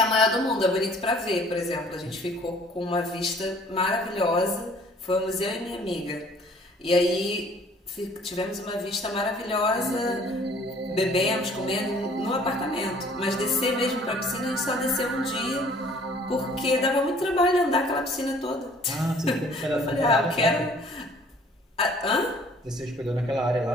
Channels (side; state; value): both; normal; correlation 0.55